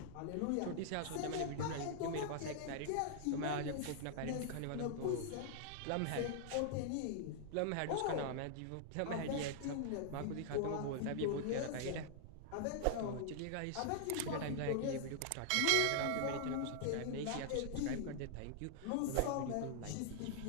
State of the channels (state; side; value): different; both; correlation -0.01